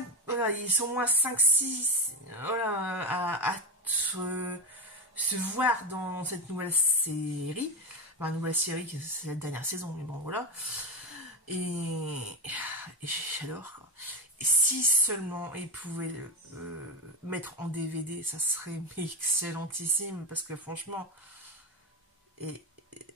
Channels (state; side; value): normal; both; correlation 0.16